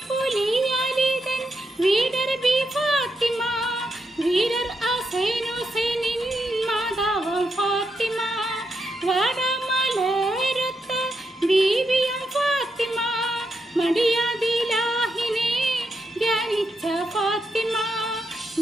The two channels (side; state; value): both; normal; correlation 0.83